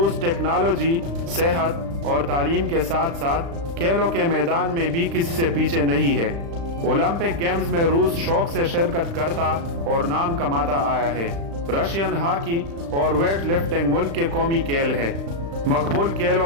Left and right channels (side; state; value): left; late; 35 ms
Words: टेक्नोलॉजी, सेहत और तालीम के साथ साथ खेलों के मैदान में भी किसी से पीछे नहीं है। ओलंपिक गेम्स में रूस शौक से शिरकत करता और नाम कमाता आया है। रशियन हॉकी और वेट लिफ्टिंग मुल्क के कौमी खेल है। मकबूल